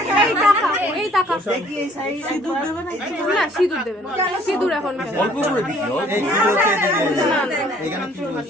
এই টাকা সিঁদুর দেবে না, সিঁদুর দেবে না, সিঁদুর এখন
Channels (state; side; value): normal; both; correlation 0.59